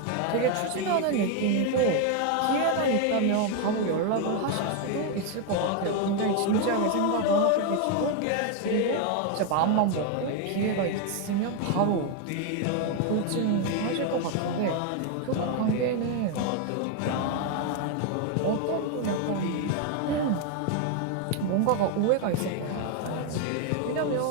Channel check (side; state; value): both; different; correlation 0.01